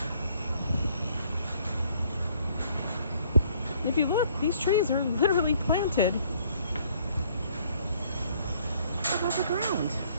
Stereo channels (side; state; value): both; inverted; correlation -0.62